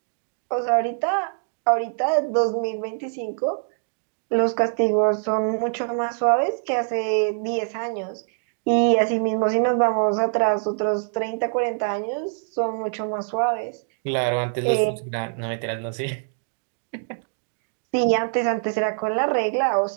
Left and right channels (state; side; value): silent; left; digital silence